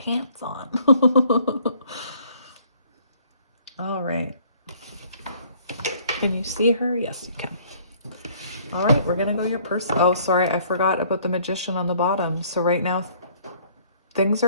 on. All right. Can you see her? Yes, you can. All right, we're going to go your person. Oh, sorry, I forgot about the Magician on the bottom. So right now, things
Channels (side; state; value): both; inverted; correlation -0.59